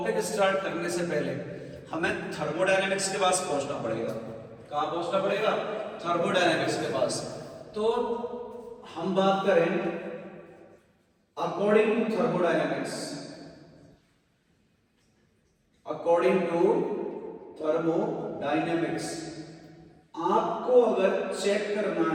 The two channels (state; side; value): identical; both; correlation 1.00